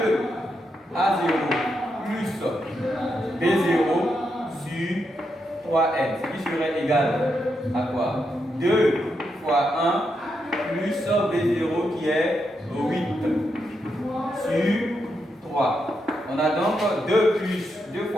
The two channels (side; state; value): both; normal; correlation 0.83